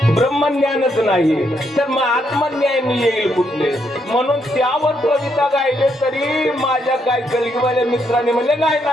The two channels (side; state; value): both; normal; correlation 0.76